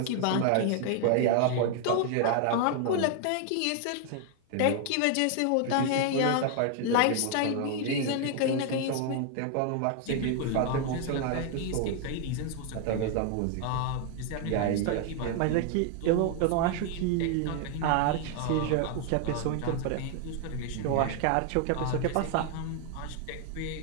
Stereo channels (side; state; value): both; different; correlation 0.00